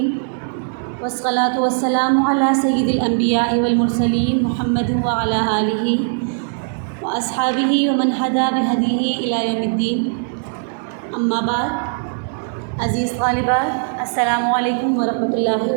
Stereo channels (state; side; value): silent; left; digital silence